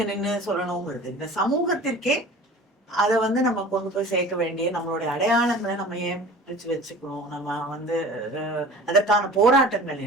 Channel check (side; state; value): both; normal; correlation 0.41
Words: நின்று சொல்லணுங்கிறது இந்த சமூகத்திற்கே அதை வந்து நம்ம கொண்டு போய் சேர்க்க வேண்டிய நம்மளுடைய அடையாளங்களை நம்ம ஏன் பிரிச்சு வச்சுக்கணும். நம்ம வந்து அதற்கான போராட்டங்கள்